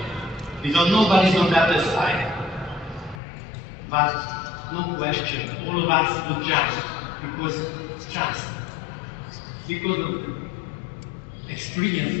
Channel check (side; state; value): right; drops out; at 3.2 s